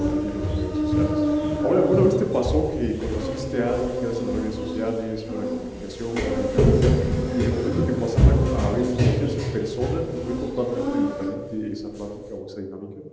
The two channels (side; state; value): both; identical; correlation 1.00